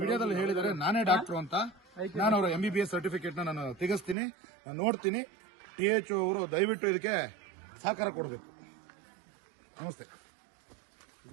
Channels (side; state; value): left; drops out; at 4.2 s